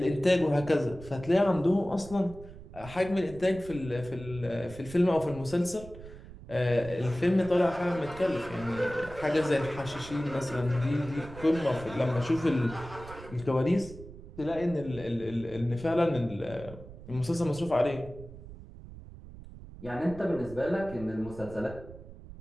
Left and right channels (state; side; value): noise; right; rumble, 16 dB below the sound